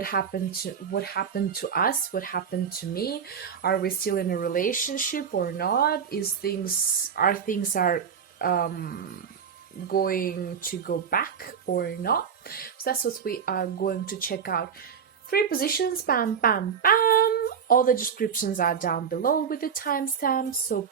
happened to us? What happened to me? Are we still in a relationship or not? Are things going to go back or not? So that's what we are going to check out. 3 positions, bam, bam, bam. All the descriptions are down below with the timestamps, so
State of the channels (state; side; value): quieter; left; 7.2 dB